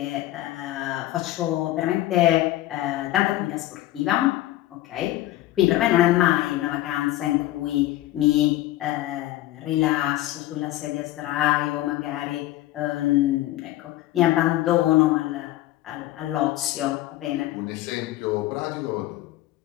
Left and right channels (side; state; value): right; quieter; 15.4 dB